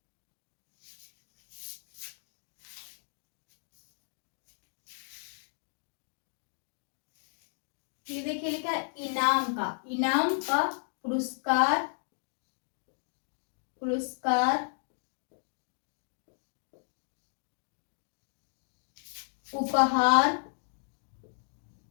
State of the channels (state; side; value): silent; right; 55 dB below the other